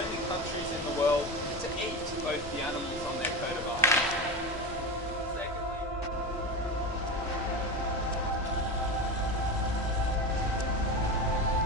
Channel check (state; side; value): normal; both; correlation 0.23